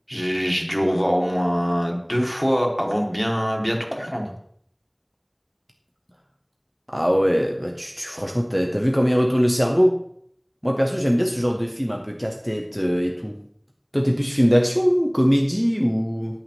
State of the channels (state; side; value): identical; both; correlation 1.00